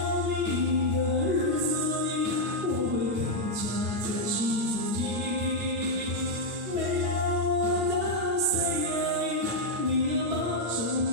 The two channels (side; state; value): left; late; 8.2 ms